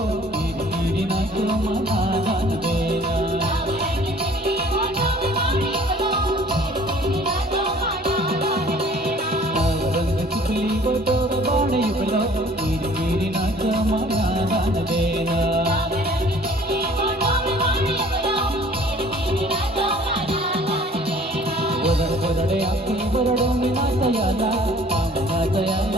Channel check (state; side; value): normal; both; correlation 0.52